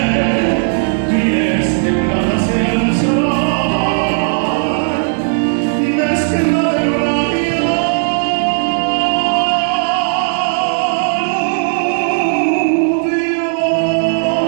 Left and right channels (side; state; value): left; silent; digital silence